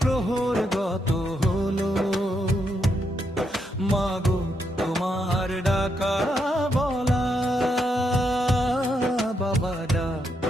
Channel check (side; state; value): both; normal; correlation 0.80